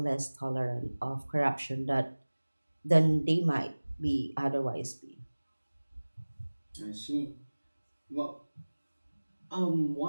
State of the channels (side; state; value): both; inverted; correlation -1.00